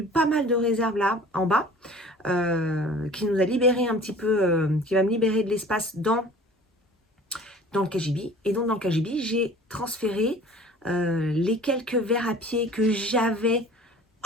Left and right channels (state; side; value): normal; both; correlation 0.46